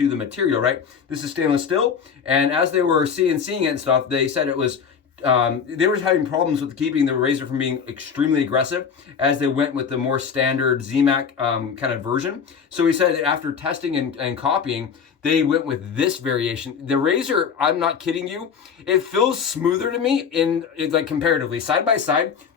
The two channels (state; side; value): quieter; right; 6.7 dB